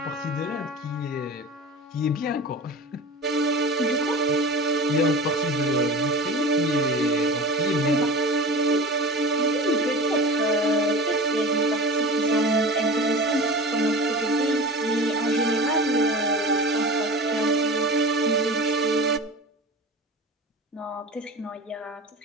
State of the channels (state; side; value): normal; both; correlation 0.33